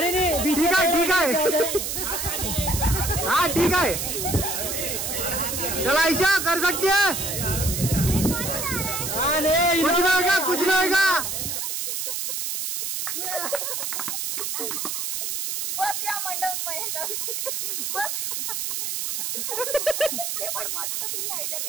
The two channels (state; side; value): noise; right; hiss, 2 dB below the sound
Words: नाही ठीक आहे ठीक आहे. हा ठीक आहे. चला आयशा कर सकती है. कुछ नहीं होगा कुछ नहीं होगा. बस या मंडप बस. ते पण मस्त तिने आयडिया